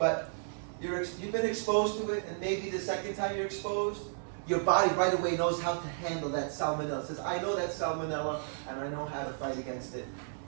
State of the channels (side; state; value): left; silent; digital silence